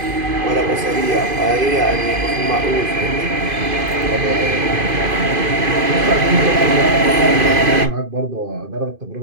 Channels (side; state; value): left; late; 2.5 ms